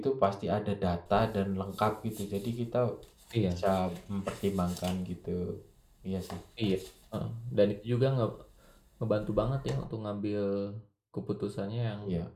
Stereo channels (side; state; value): both; identical; correlation 1.00